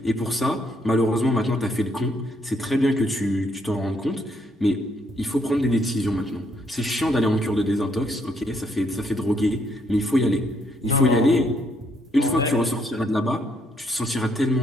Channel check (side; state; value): both; normal; correlation 0.72